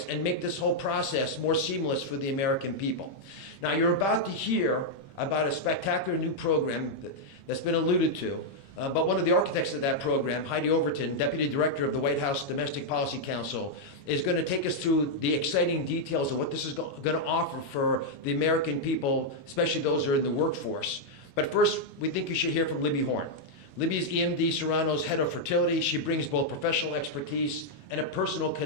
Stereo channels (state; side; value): late; right; 22 ms